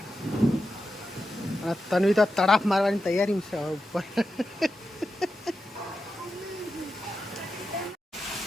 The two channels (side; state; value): both; normal; correlation 0.89